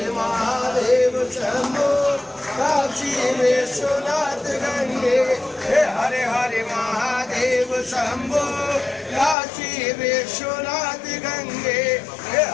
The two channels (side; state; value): right; drops out; at 9.3 s